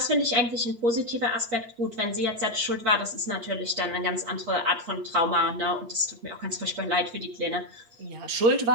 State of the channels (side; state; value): left; late; 8.5 ms